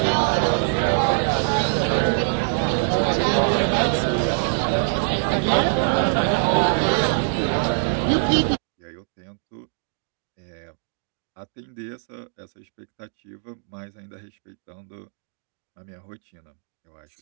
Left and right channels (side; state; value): left; silent; digital silence